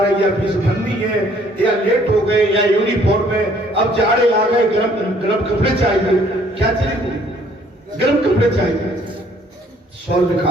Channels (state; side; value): normal; both; correlation 0.61